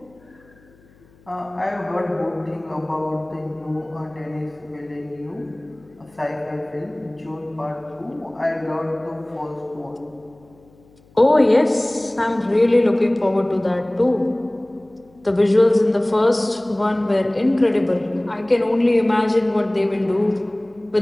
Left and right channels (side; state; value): left; noise; hum, 29 dB below the sound